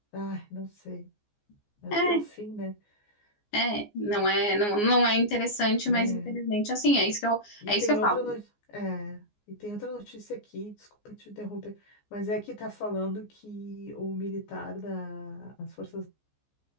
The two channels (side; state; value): right; late; 14 ms